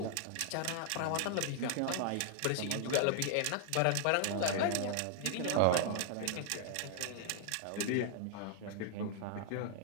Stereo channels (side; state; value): both; different; correlation -0.01